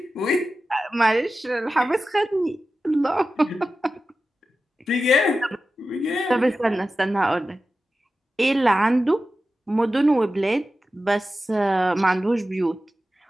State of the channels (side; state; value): both; normal; correlation 0.93